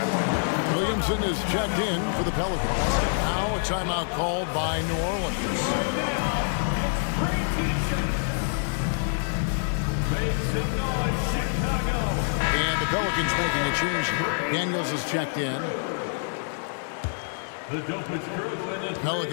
Williamson is checked in for the Pelicans. Now a timeout called by New Orleans. And the Pelicans making a change here. Daniels is checked in. The dopest crew in the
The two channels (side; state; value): right; silent; digital silence